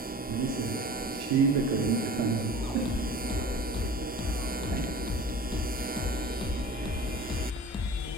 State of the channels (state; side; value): normal; both; correlation 0.40